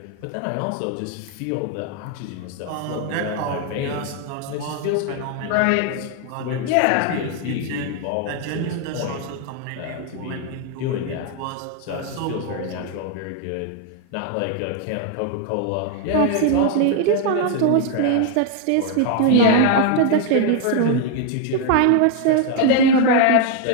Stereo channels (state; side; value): different; both; correlation 0.00